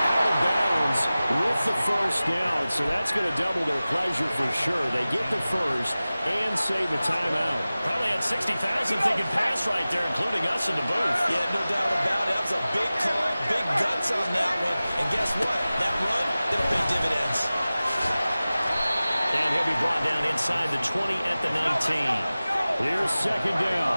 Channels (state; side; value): inverted; both; correlation -0.97